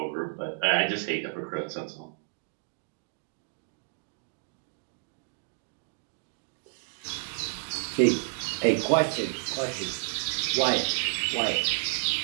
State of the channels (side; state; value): left; silent; digital silence